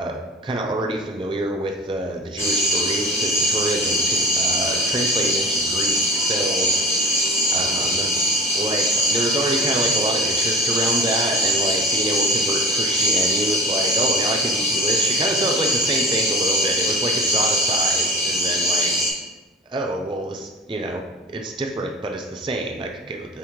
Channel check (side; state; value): both; normal; correlation 0.35